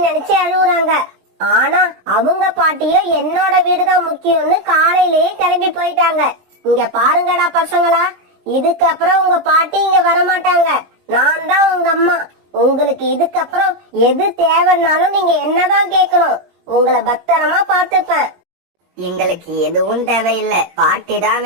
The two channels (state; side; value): late; left; 19 ms